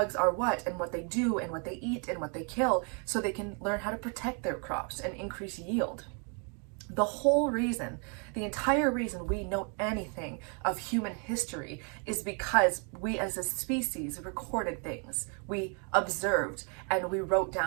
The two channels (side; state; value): left; quieter; 38.0 dB